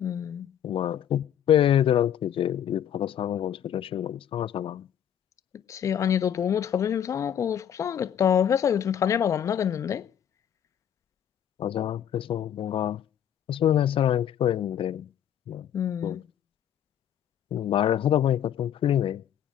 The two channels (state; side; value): quieter; right; 9.6 dB